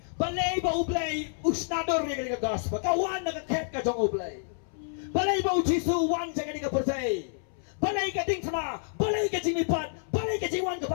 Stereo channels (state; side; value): silent; right; 59 dB below the other